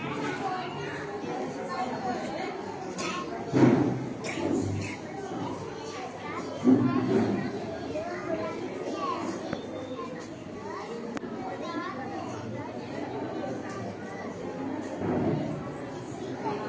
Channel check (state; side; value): identical; both; correlation 1.00